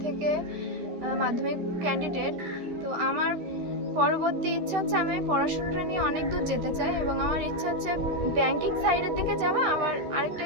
থেকে মাধ্যমিক ক্যান্ডিডেট। তো আমার পরবর্তী ইচ্ছা হচ্ছে আমি পড়াশোনাটা নিয়ে অনেক দূর যেতে চাই এবং আমার ইচ্ছা হচ্ছে ব্যাংকিং সাইডের দিকে যাওয়া। আবার আরেকটা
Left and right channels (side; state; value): left; late; 13 ms